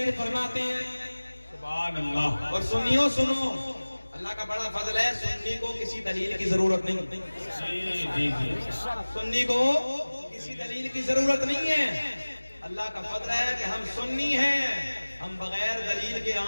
فرماتے ہیں. سبحان اللہ. اور سنیو سنو، اللہ کا بڑا فضل ہے، سنی کو کسی دلیل کی ضرورت نہیں. جی جی جی. سنی کو کسی دلیل کی ضرورت نہیں ہے. اللہ کا فضل ہے کہ ہم سنی ہیں، ہم بغیر دلیل کے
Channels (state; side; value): inverted; both; correlation -1.00